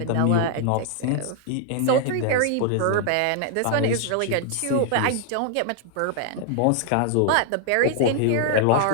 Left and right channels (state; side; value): different; both; correlation -0.01